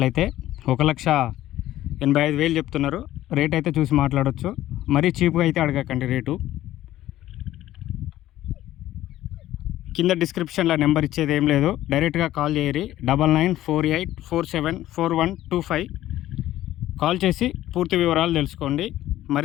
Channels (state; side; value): quieter; right; 14.1 dB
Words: 1,85,000 చెప్తున్నారు. రేట్ అయితే చూసి మాట్లాడవచ్చు. మరీ చీప్గా అయితే అడగకండి రేటు. కింద డిస్క్రిప్షన్లో నెంబర్ ఇచ్చేది ఏం లేదు, డైరెక్ట్గా కాల్ చేయరి. 9948474125 కాల్ చేసి పూర్తి వివరాలు తెలుసుకోండి.